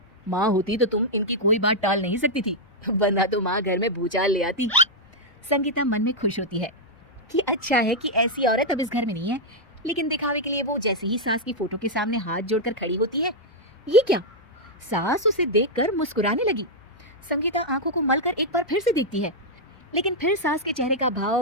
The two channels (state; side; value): normal; both; correlation -0.04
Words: माँ होती तो तुम इनकी कोई बात टाल नहीं सकती थी, वरना तो माँ घर में भूचाल ले आती। संगीता मन में खुश होती है कि अच्छा है कि ऐसी औरत अब इस घर में नहीं है, लेकिन दिखावे के लिए वो जैसे ही सास की फोटो के सामने हाथ जोड़कर खड़ी होती है, ये क्या, सास उसे देखकर मुस्कुराने लगी। संगीता आंखों को मलकर एक बार फिर से देखती है, लेकिन फिर सास के चेहरे का